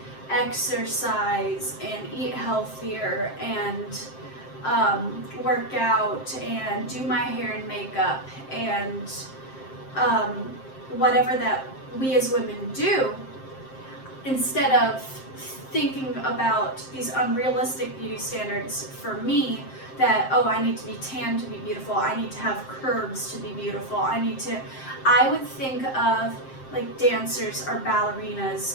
exercise and eat healthier and work out and do my hair and makeup and whatever that we as women do, instead of thinking about these unrealistic beauty standards for me, that, oh, I need to be tan to be beautiful, I need to have curves to be beautiful, I would think of like dancers or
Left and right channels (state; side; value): late; right; 7.6 ms